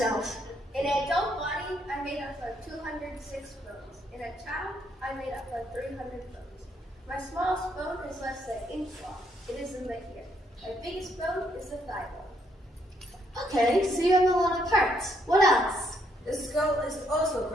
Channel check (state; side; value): normal; both; correlation 0.73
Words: In an adult body, I'm made up of 206 bones. In a child, I'm made up of 300 bones. My smallest bone is less than an inch long. It is in the ear. My biggest bone is the thigh bone. Okay, so you have a lot of parts. What else? The skull is also